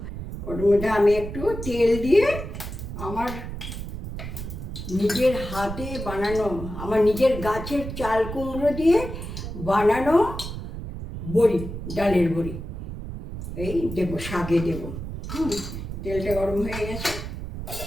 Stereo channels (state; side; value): noise; right; rumble, 8 dB below the sound